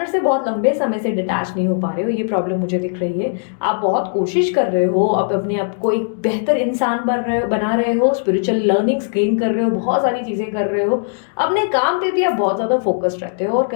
से बहुत लंबे समय से डिटैच नहीं हो पा रहे हो, ये प्रॉब्लम मुझे दिख रही है। आप बहुत कोशिश कर रहे हो, आप अपने आप को एक बेहतर इंसान बना रहे हो, स्पिरिचुअल लर्निंग्स गेन कर रहे हो, बहुत सारी चीज़ें कर रहे हो, अपने काम पे भी आप बहुत ज़्यादा फोकस्ड रहते हो और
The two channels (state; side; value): silent; right; digital silence